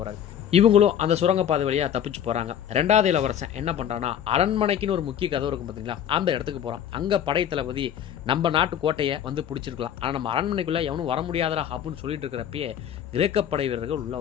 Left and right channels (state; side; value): quieter; right; 9.6 dB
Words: இவங்களும் அந்த சுரங்கப்பாதை வழியாக தப்பிச்சு போகிறாங்க. 2வது இளவரசன் என்ன பண்ணுறான்னா, அரண்மனைக்குன்னு ஒரு முக்கிய கதவு இருக்கும் பார்த்தீங்களா, அந்த இடத்துக்கு போகிறான். அங்கே படை தளபதி நம்ம நாட்டு கோட்டையை வந்து பிடிச்சிருக்கலாம், ஆனால் நம்ம அரண்மனைக்குள்ளே எவனும் வர முடியாதரா அப்படின்னு சொல்லிட்டு இருக்கிறப்பயே கிரேக்க படை வீரர்கள் உள்ளே